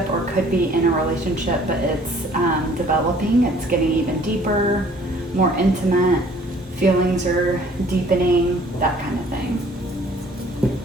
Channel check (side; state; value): both; normal; correlation 0.56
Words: or could be in a relationship, but it's developing. It's getting even deeper, more intimate. Feelings are deepening, that kind of thing.